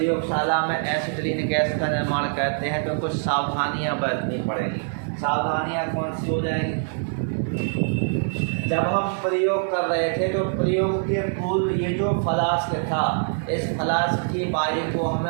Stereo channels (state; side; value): silent; left; digital silence